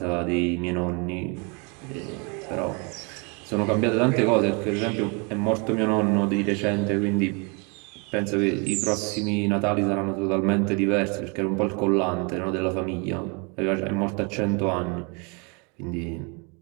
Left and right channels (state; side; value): quieter; left; 32.5 dB